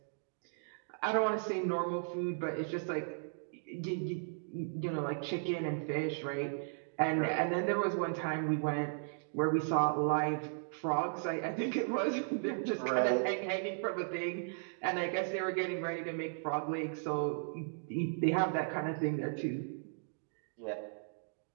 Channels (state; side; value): silent; left; digital silence